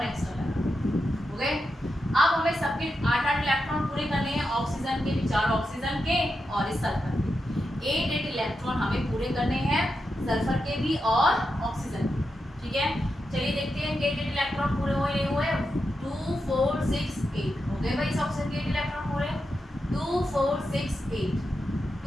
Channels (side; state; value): both; normal; correlation 0.87